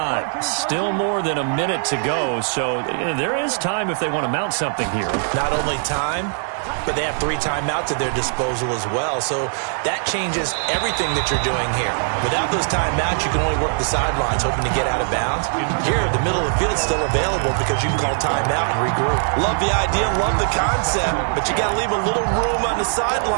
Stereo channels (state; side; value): silent; left; 62 dB below the other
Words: Still more than a minute to go, so there is time if they want to mount something here. Not only time, but they have 3 timeouts at their disposal as well, so that changes everything that you're doing here. Without those timeouts, you can only work the sidelines, hoping to get out of bounds. Here, the middle of the field is still available because you can call timeout and regroup. Love the idea, love the concept, but you got to leave a little room on the